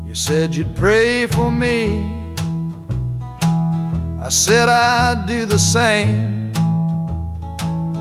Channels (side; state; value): both; identical; correlation 1.00